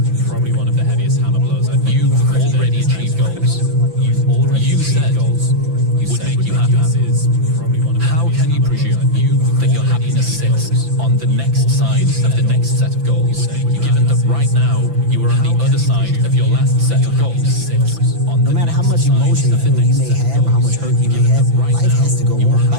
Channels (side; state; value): left; late; 5.9 ms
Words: probably one of the heaviest hammer blows, I think. You've already achieved goals. You said goals would make you happy. How can you presume that your happiness sits on the next side of the next set of goals, given that right now you are on the other side of your last set of goals? No matter how much emotion you may have or how much hurt you may have, life has to go on.